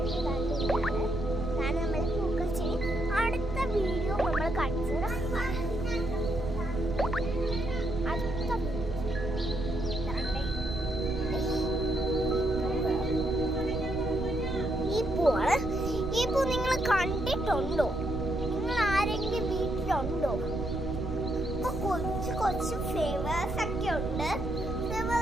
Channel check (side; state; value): right; noise; rumble, 6 dB below the sound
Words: നമ്മൾ പൂക്കൾ ചെടി അടുത്ത വീഡിയോ നമ്മൾ കാണിച്ചു തരാം. ഈ പൂ നിങ്ങൾ കണ്ടിട്ടുണ്ടോ? നിങ്ങൾ ആരെങ്കിലും വീട്ടിലുണ്ടോ? ഇപ്പൊ കൊച്ചു കൊച്ചു ഫ്ലേവേഴ്സ് ഒക്കെ ഉണ്ട്.